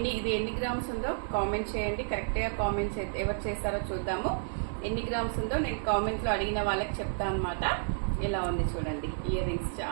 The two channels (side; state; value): left; silent; digital silence